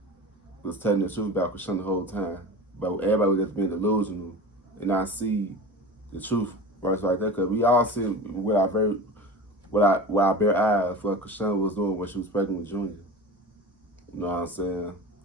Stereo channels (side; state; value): both; normal; correlation 0.32